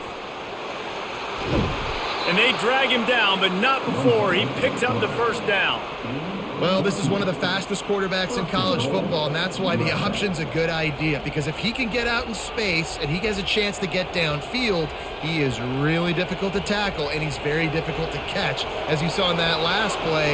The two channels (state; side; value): identical; both; correlation 1.00